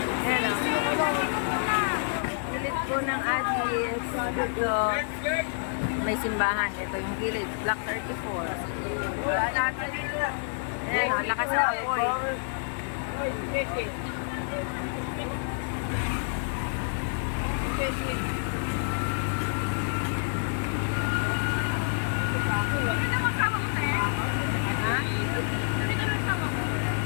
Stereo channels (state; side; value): silent; right; digital silence